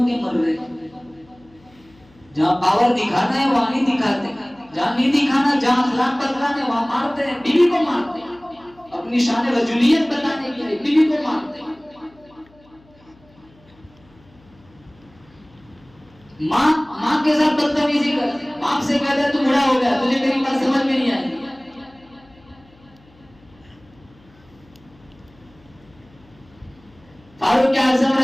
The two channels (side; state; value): left; noise; hum, 29 dB below the sound